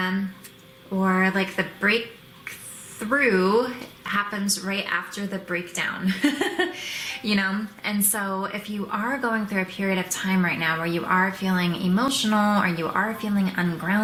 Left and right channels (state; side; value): identical; both; correlation 1.00